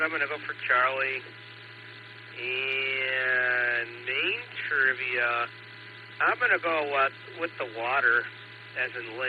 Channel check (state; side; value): identical; both; correlation 1.00